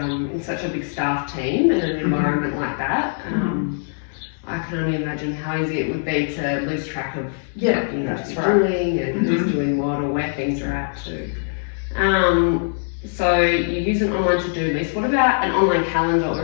such a big staff team in an environment like that, I can only imagine how easy it would be to lose track of what you need to be doing and who's doing what or where things are at too. So you use an online to-do list. What about an online calendar, or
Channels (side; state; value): right; silent; digital silence